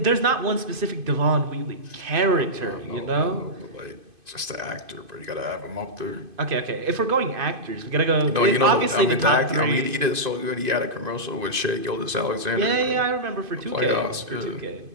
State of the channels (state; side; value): late; left; 2.5 ms